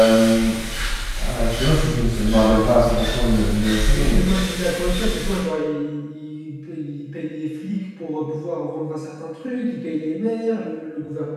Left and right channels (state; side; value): identical; both; correlation 1.00